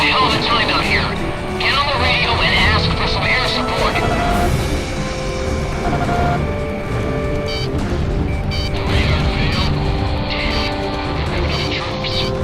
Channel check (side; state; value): both; identical; correlation 1.00